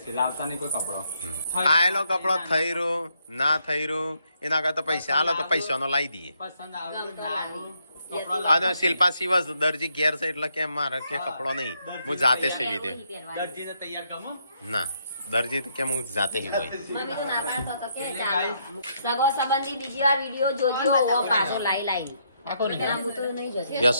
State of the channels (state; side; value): inverted; both; correlation -0.75